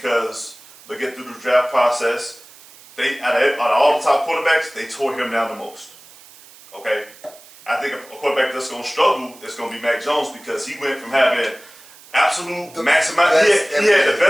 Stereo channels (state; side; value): noise; right; hiss, 22 dB below the sound